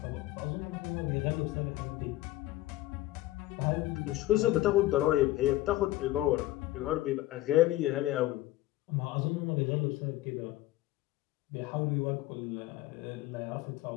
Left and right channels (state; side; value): quieter; right; 16.5 dB